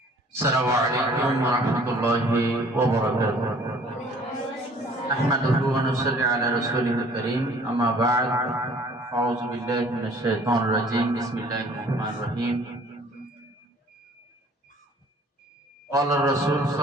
warahmatullahi wabarakatuh. Ahmaduhu wa nusalli ala rasulihil karim. Amma ba'd. A'udzu billahi minasy syaithanir rajim. Bismillahirrahmanirrahim. Qala Rasul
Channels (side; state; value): both; normal; correlation 0.54